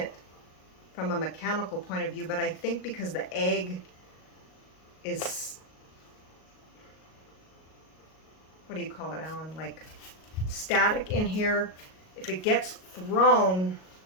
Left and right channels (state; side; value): late; right; 38 ms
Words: from a mechanical point of view, but I think because the egg is, what do you call it, Alan? Like static in here. if it gets thrown,